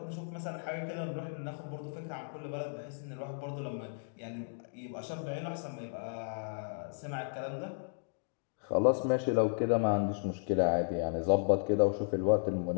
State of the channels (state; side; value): silent; right; digital silence